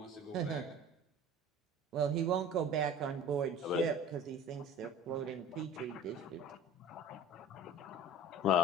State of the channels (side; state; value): both; normal; correlation 0.40